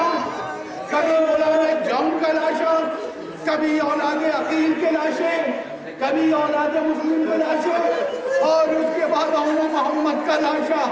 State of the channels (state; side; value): identical; both; correlation 1.00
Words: کبھی مولانا جم کا لاشا، کبھی اولاد عقیل کے لاشیں، کبھی اولاد مسلم کے لاشیں، اور اس کے بعد عمر محمد کا لاشا،